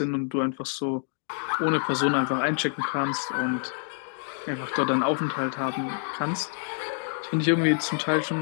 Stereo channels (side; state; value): right; silent; 60 dB below the other